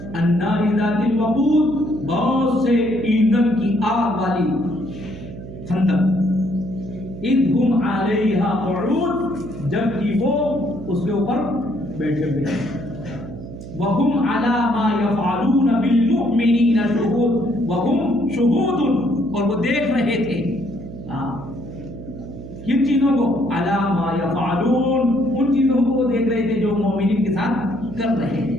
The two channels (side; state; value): right; noise; hum, 12 dB below the sound